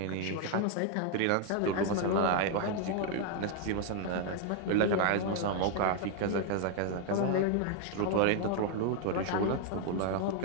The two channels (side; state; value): both; different; correlation 0.01